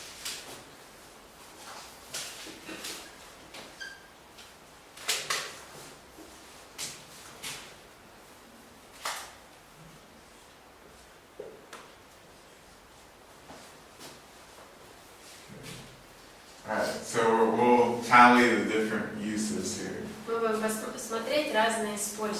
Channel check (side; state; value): both; identical; correlation 1.00